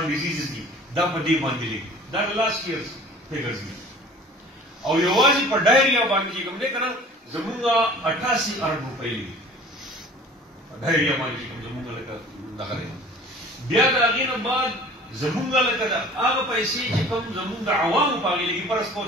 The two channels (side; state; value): both; normal; correlation 0.46